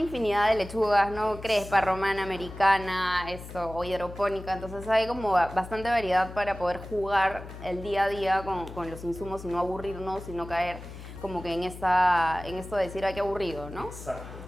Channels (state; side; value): noise; left; hum, 13 dB below the sound